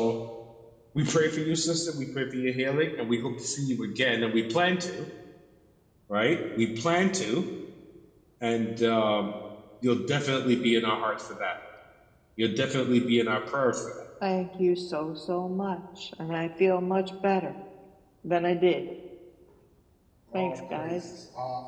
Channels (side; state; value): both; identical; correlation 1.00